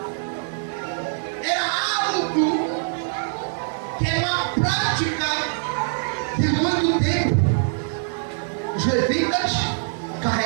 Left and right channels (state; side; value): silent; left; digital silence